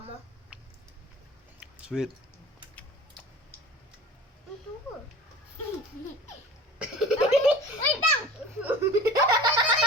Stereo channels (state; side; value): normal; both; correlation 0.39